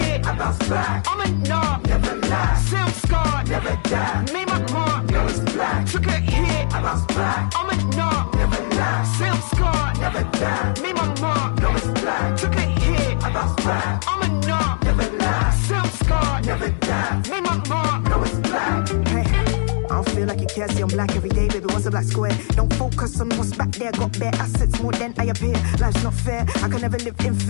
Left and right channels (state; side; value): silent; right; digital silence